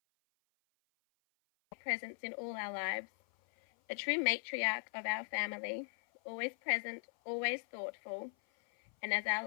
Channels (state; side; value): silent; right; 52 dB below the other